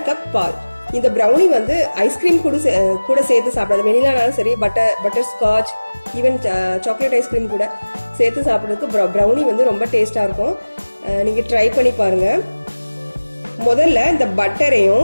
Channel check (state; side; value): inverted; both; correlation -1.00